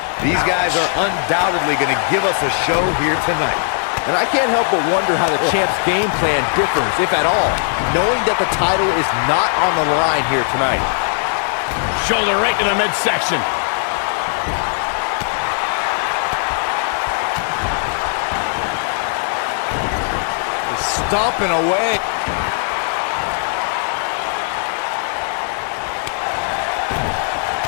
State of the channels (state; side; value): silent; right; digital silence